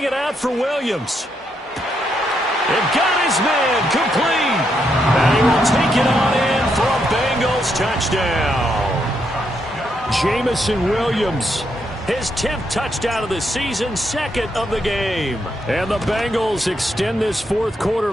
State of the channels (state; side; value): normal; both; correlation 0.78